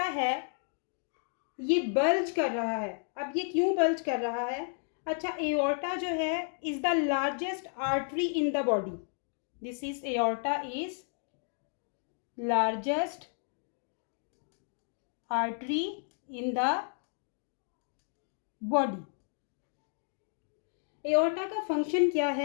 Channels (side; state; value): right; silent; 56 dB below the other